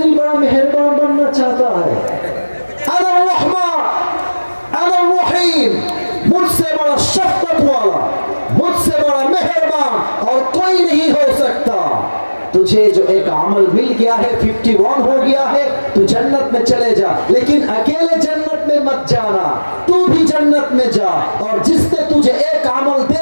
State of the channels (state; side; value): inverted; both; correlation -1.00